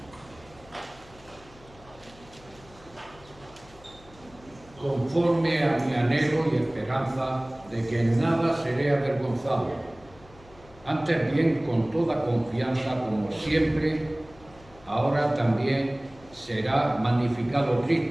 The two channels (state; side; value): noise; left; hum, 24 dB below the sound